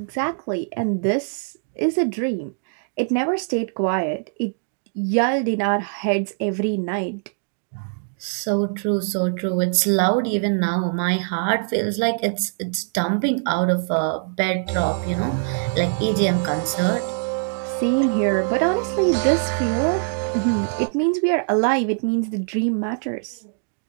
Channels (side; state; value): left; silent; digital silence